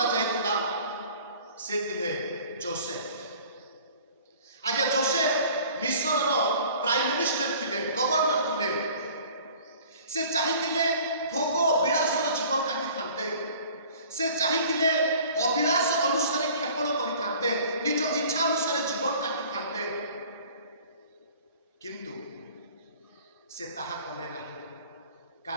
जायतिला, से थिले जोसेफ। आज्ञा जोसेफ मिस्र प्राइम मिनिस्टर थिले, गवर्नर थिले, से चाहिए भोग विलासर जीवन काटी थांते, से चाहिए अभिलाष अनुसार क्षेपण करि निज इच्छा अनुसार जीवन काटी थांते, किंतु से ताहा कले नहीं।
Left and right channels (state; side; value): inverted; both; correlation -0.49